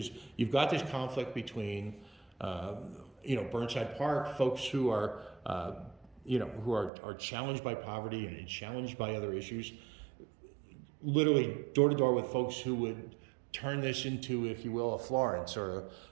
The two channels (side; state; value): left; drops out; at 6.9 s